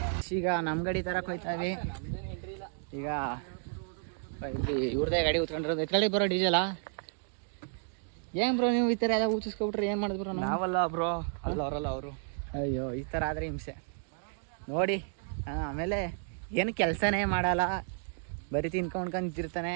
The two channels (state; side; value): silent; left; 56 dB below the other